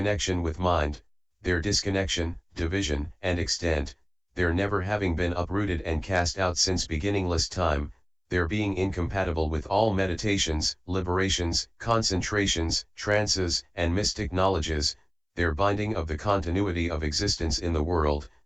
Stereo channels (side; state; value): both; identical; correlation 1.00